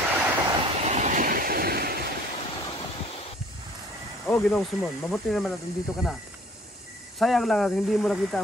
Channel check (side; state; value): both; normal; correlation 0.54